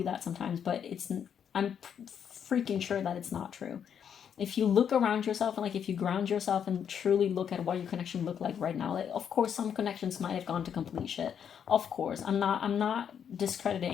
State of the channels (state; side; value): quieter; right; 8.1 dB